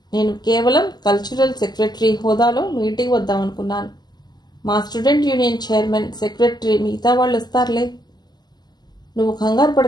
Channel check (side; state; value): right; late; 0.20 ms